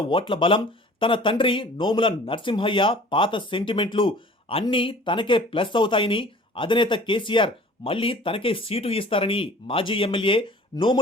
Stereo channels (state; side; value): normal; both; correlation 0.47